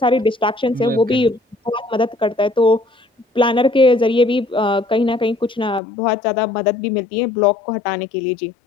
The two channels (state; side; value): drops out; right; at 5.8 s